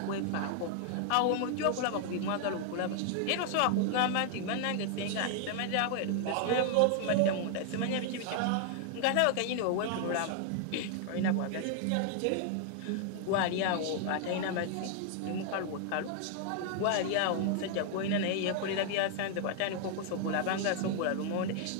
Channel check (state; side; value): different; both; correlation 0.00